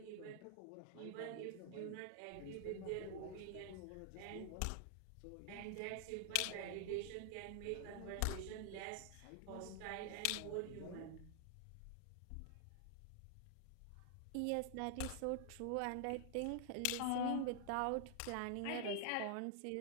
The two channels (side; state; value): both; different; correlation 0.00